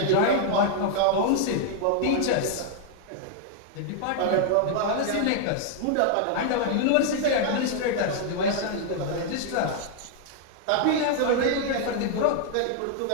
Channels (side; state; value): both; different; correlation 0.00